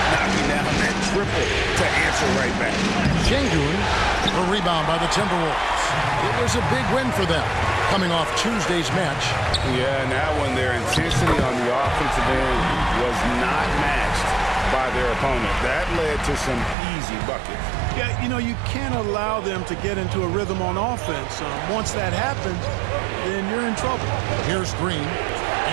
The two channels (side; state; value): left; drops out; at 16.8 s